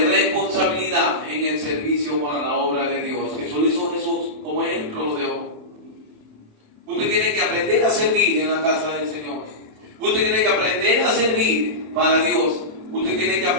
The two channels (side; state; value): left; late; 27 ms